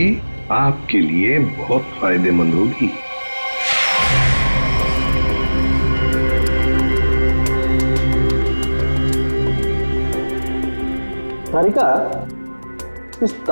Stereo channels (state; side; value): inverted; both; correlation -1.00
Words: आपके लिए बहुत फायदेमंद होगी। तारिका, इस